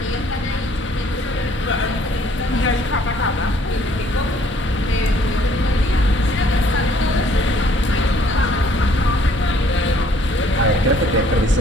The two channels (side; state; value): both; normal; correlation 0.61